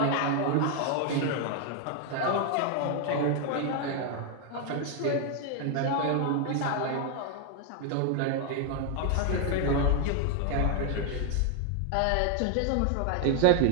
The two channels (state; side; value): different; both; correlation 0.00